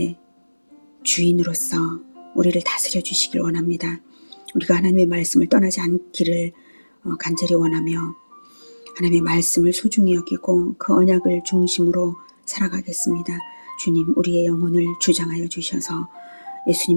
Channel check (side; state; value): both; inverted; correlation -1.00